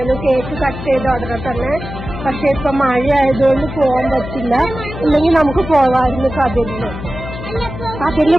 കേക്ക് കട്ട് ചെയ്ത ഉടനെ തന്നെ. പക്ഷെ ഇപ്പൊ മഴ ആയതുകൊണ്ട് പോകാൻ പറ്റില്ല. ഇല്ലെങ്കിൽ നമുക്ക് പോവായിരുന്നു കതിരില്. കതിരില്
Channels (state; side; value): noise; left; hum, 9 dB below the sound